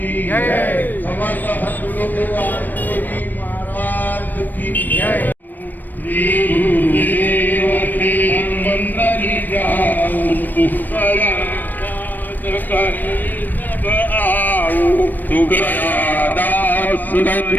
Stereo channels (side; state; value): right; late; 0.090 ms